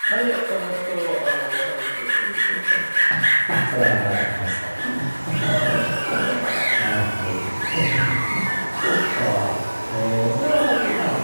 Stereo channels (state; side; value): inverted; both; correlation -1.00